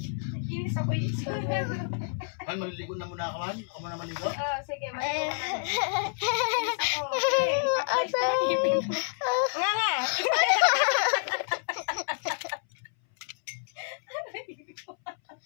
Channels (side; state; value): right; silent; 59 dB below the other